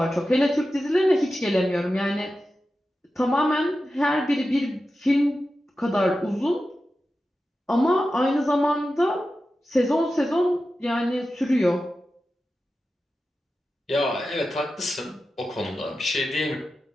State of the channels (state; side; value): normal; both; correlation 0.92